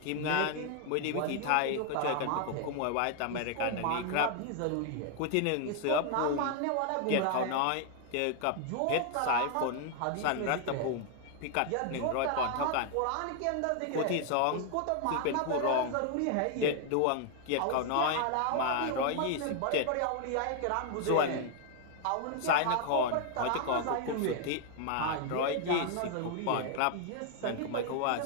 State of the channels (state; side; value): different; both; correlation 0.00